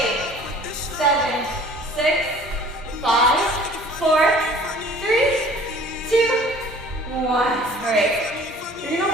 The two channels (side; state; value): both; normal; correlation 0.49